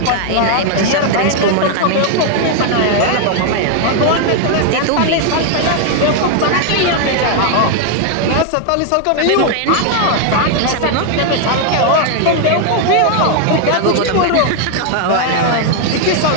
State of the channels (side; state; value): both; different; correlation 0.00